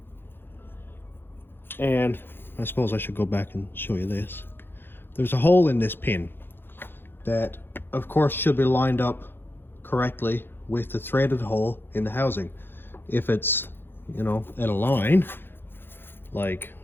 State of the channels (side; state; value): right; late; 0.10 ms